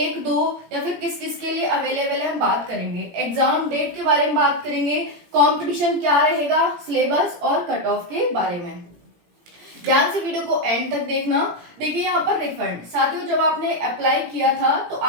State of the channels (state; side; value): late; left; 17 ms